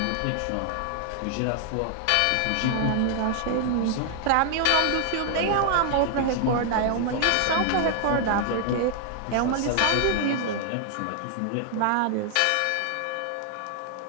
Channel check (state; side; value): different; both; correlation 0.00